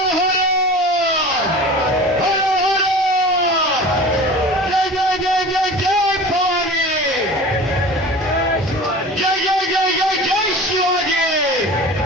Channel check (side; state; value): both; normal; correlation 0.38